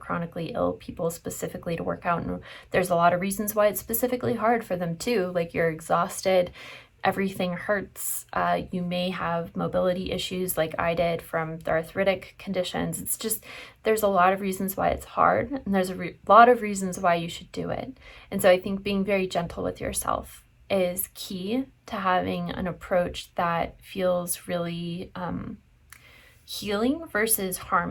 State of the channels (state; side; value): identical; both; correlation 1.00